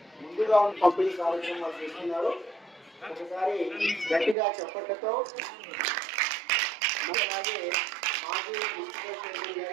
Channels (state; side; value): drops out; left; at 4.4 s